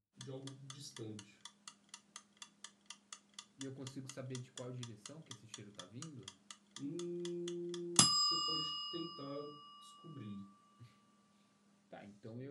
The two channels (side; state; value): both; identical; correlation 1.00